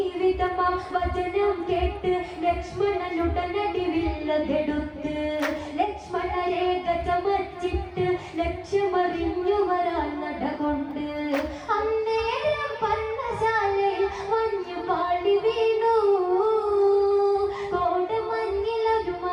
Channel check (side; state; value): both; identical; correlation 1.00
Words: വിധമാം വചനം കേട്ട് ലക്ഷ്മണനുടനടി വില്ലതെടുത്ത് ലക്ഷ്മണ രേഖ ചമച്ചിട്ട് ലക്ഷ്യമറിഞ്ഞു വരാൻ നടകൊണ്ട് അന്നേരം പർണശാലയിൽ മഞ്ഞു പാടി വീണു കോടമഞ്ഞിലൊരു